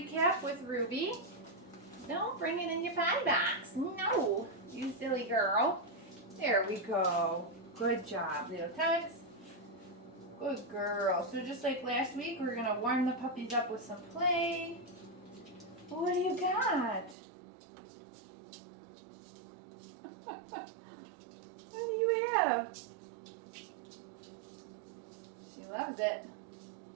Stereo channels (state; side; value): drops out; left; at 17.2 s